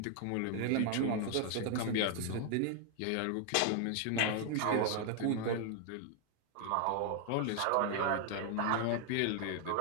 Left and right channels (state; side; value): different; both; correlation 0.00